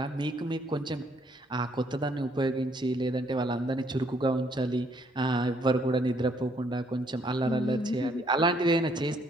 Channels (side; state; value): both; normal; correlation 0.67